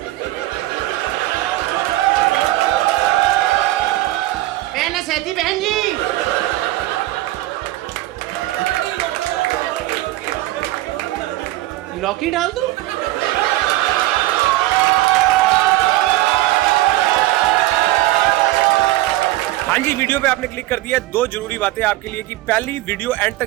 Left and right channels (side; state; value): left; quieter; 17.1 dB